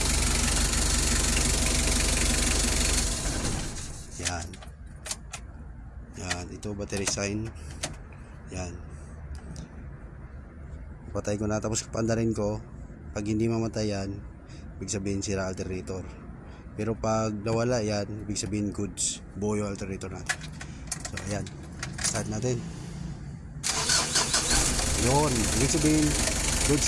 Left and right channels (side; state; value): both; identical; correlation 1.00